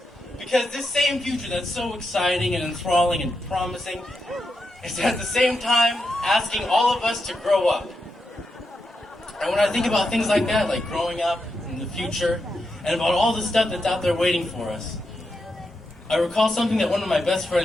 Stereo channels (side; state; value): both; normal; correlation 0.86